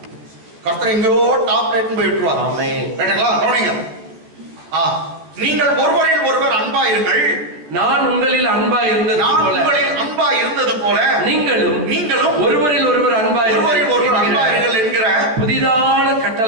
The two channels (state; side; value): late; left; 13 ms